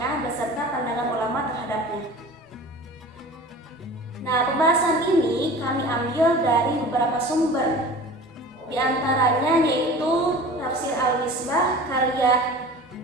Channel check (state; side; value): normal; both; correlation 0.40